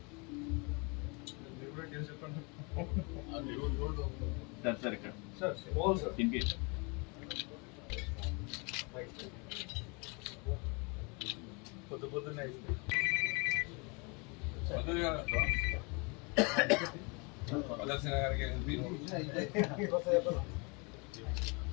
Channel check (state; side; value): quieter; right; 30.9 dB